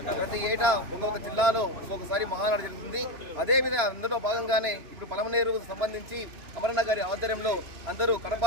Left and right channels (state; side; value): late; left; 3.0 ms